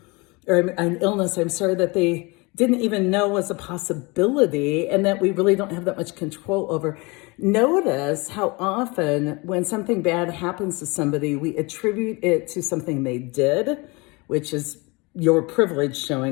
or an illness, that they didn't even know was a possibility and that we really don't have that much control over. Notice how often when something bad happens to somebody, we attribute it to something they did, which is your privilege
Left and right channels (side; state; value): right; quieter; 26.6 dB